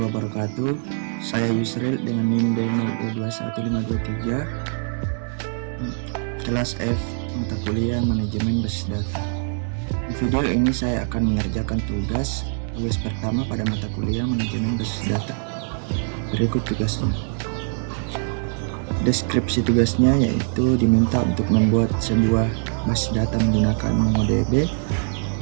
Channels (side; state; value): left; silent; 63 dB below the other